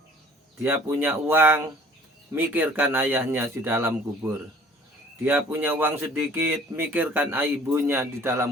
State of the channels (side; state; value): both; normal; correlation 0.52